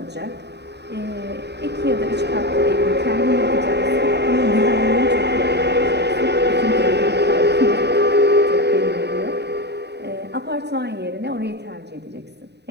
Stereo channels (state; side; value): late; left; 0.49 ms